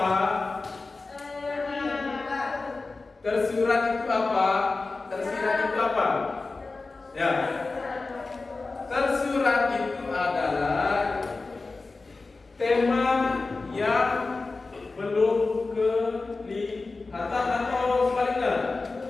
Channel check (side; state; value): right; quieter; 3.7 dB